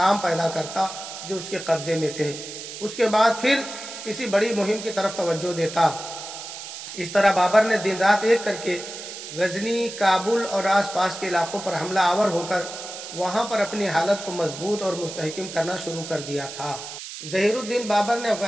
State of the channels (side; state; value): right; noise; hiss, 10 dB below the sound